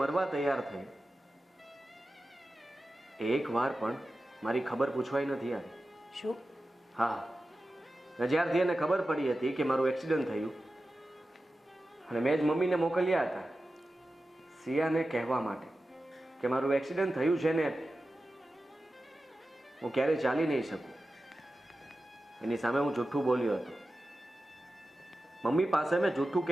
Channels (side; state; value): both; normal; correlation 0.93